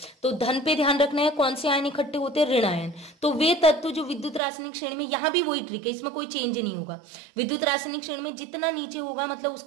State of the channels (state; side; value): drops out; left; at 4.4 s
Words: तो धन पे ध्यान रखना है, कौन से आयन इकट्ठे होते हैं? ऋण आयन। तो वे तत्व जो विद्युत रासायनिक श्रेणी में, यहाँ भी वही ट्रिक है, इसमें कोई चेंज नहीं होगा। विद्युत रासायनिक श्रेणी में जितना नीचे होगा मतलब